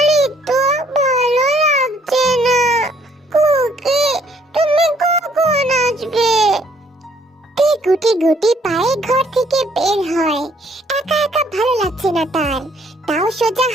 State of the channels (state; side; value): normal; both; correlation 0.64